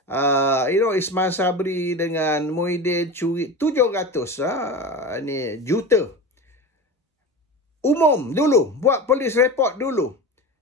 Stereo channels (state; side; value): normal; both; correlation 0.28